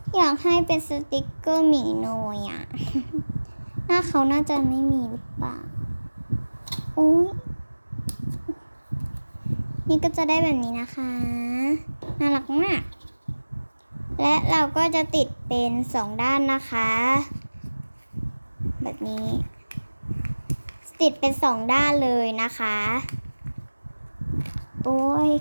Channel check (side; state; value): both; inverted; correlation -1.00